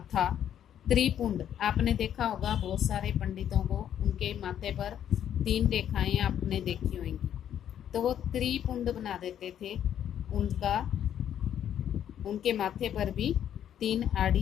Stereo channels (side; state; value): right; quieter; 10.1 dB